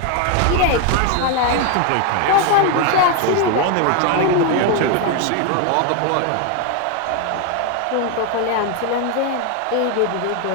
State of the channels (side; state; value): both; different; correlation 0.01